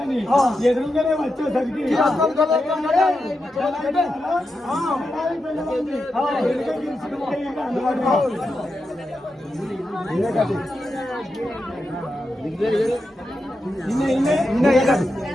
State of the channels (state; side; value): normal; both; correlation 0.88